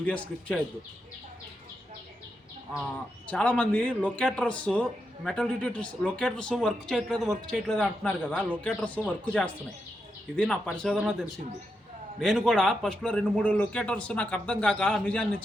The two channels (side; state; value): both; normal; correlation 0.85